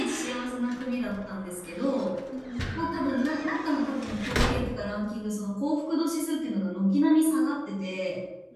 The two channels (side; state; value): both; identical; correlation 1.00